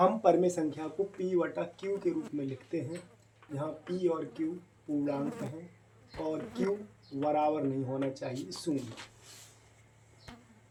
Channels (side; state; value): both; identical; correlation 1.00